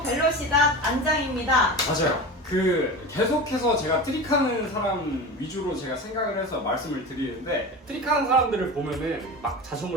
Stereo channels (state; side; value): normal; both; correlation 0.29